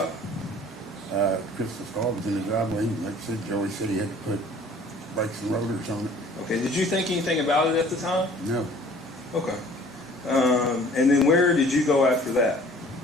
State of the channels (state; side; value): normal; both; correlation 0.51